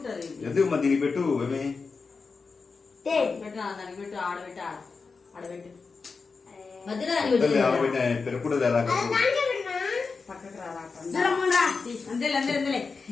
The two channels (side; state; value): right; quieter; 4.7 dB